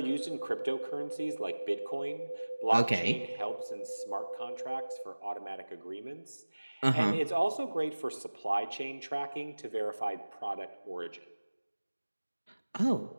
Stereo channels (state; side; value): inverted; both; correlation -1.00